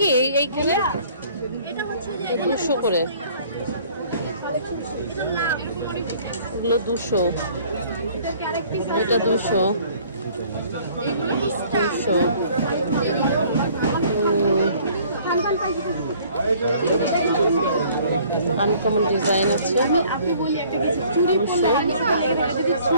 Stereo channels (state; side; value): inverted; both; correlation -0.55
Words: এইখানে 200 করে। এগুলো 200, এটা 200, 200। আনকমন ডিজাইন আছে, 200।